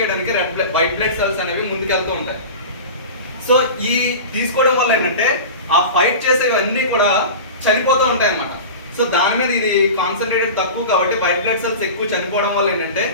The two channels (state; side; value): inverted; both; correlation -0.32